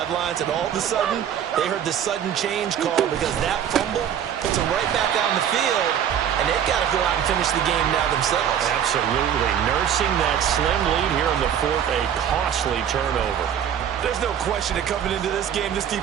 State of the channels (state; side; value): quieter; left; 9.2 dB